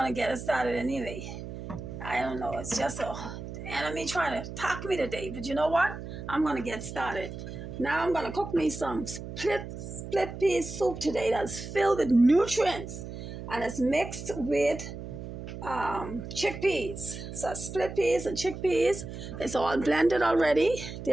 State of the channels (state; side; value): noise; right; hum, 9 dB below the sound